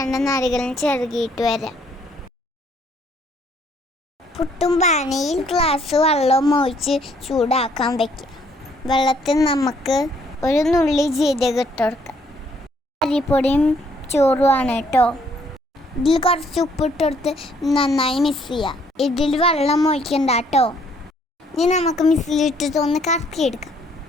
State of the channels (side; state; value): both; normal; correlation 0.66